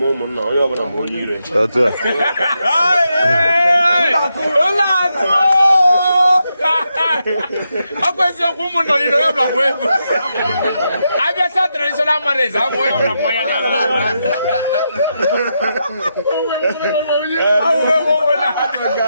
ụmụnna onye ọbụla ma onye ire ọkwa eziokwu ụmụnna niile onye ọbụla bụ egwu abịacha traditional marriage abụ onye ọbụla mmanya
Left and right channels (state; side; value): inverted; both; correlation -0.84